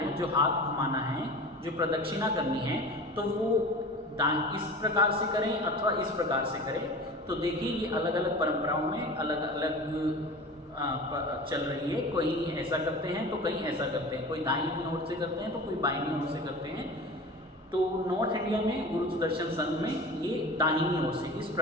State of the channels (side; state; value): both; normal; correlation 0.36